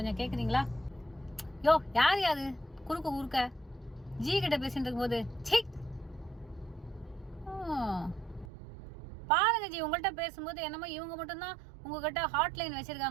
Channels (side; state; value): left; drops out; at 8.5 s